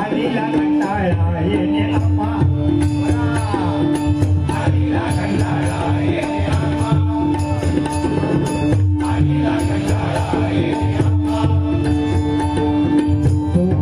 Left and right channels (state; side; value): identical; both; correlation 1.00